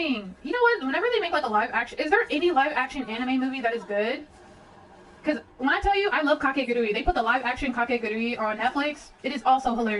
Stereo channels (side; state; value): both; identical; correlation 1.00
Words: You know what? Whenever they make like a live action, is there any live action anime movie that is good? Because when I tell you I love Kakegurui, they put the live action Kakegurui on Netflix. It is also